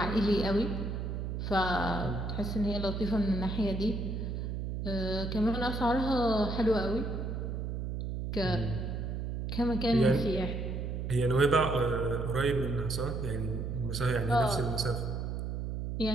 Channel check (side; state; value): right; noise; hum, 3 dB below the sound